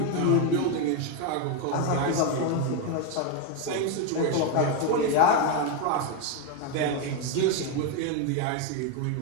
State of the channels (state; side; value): different; both; correlation 0.02